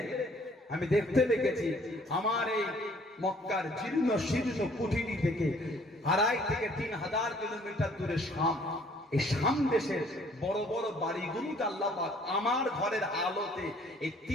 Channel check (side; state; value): both; normal; correlation 0.59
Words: আমি দেখতে পেয়েছি আমার এই মক্কার জীর্ণ শীর্ণ কুঠিরি থেকে 2.5 থেকে 3,000 কিলোমিটার দূরে শাম, এই শাম দেশের বড় বড় বাড়িগুলোকে আল্লাহ পাক আমার ঘরের আলোতে এই